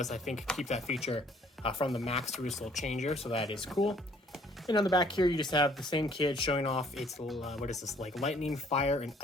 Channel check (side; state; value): both; normal; correlation 0.60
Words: I think, keep that feature from the Max RyusoulChanger, so that is cool. And on the back here, you just have the same kid showing off its, what is this, like lightning, fire, and